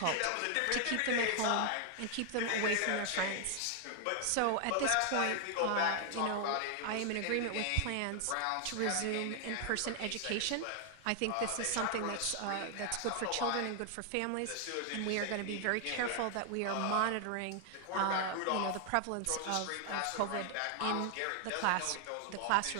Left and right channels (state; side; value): different; both; correlation 0.00